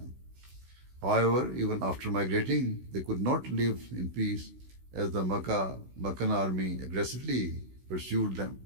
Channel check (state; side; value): late; left; 16 ms